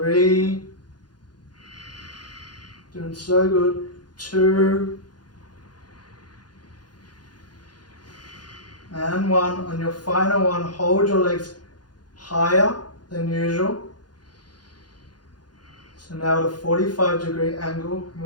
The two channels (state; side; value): late; right; 0.70 ms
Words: doing so good. 2, and 1. On your final one, hold your legs higher than usual. So now at a 45-degree angle,